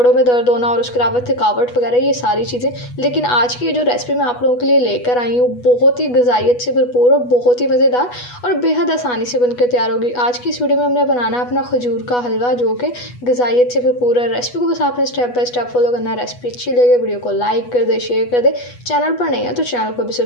में दर्द होना और उसके अलावा थकावट वगैरह ये सारी चीज़ें। लेकिन आज की जो रेसिपी मैं आप लोगों के लिए लेकर आई हूँ बहुत ही ग़िज़ाइयत से भरपूर और बहुत ही मज़ेदार और बेहद आसानी से बनकर तैयार होगी। आज की इस वीडियो में हमने बनाना है अपना खजूर का हलवा, जो कि ग़िज़ाइयत से भरपूर है। रेसिपी को बस आपने स्टेप बाय स्टेप फॉलो करना है। रेसिपी अच्छी लगे वीडियो को लाइक कर दे, शेयर कर दे, चैनल पर नहीं है तो चैनल को भी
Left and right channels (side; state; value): right; late; 8.2 ms